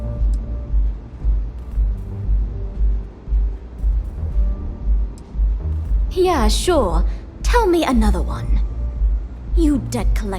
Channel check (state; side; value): identical; both; correlation 1.00